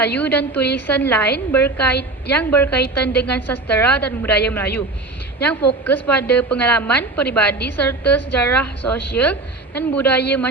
dan tulisan lain yang berkaitan dengan sastera dan budaya Melayu yang fokus pada pengalaman peribadi serta sejarah sosial dan budaya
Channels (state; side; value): quieter; left; 3.3 dB